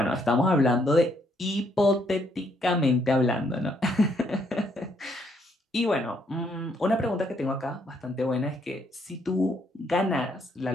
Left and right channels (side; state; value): both; normal; correlation 0.71